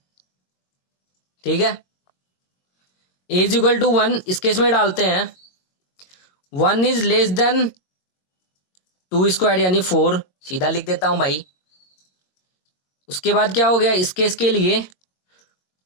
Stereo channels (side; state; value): right; late; 22 ms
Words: ठीक है, ए इज इक्वल टू 1 इस केस में डालते हैं 1 इज लेस देन 2 स्क्वायर यानी 4, सीधा लिख देता हूं भाई। उसके बाद क्या हो गया इस केस के लिए,